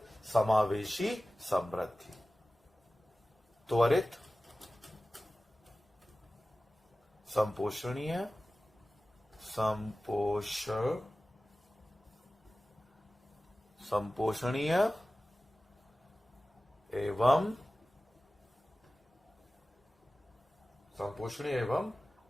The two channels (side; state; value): both; normal; correlation 0.96